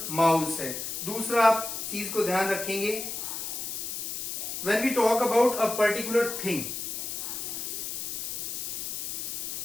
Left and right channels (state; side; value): noise; left; hiss, 4 dB below the sound